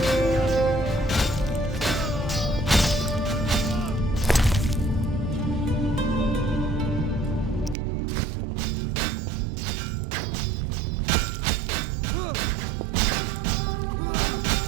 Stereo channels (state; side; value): drops out; left; at 7.8 s